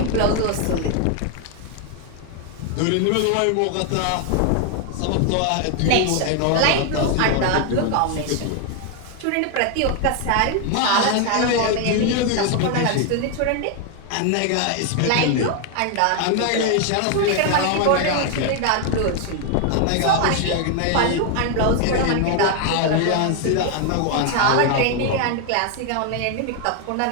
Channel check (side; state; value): both; different; correlation 0.01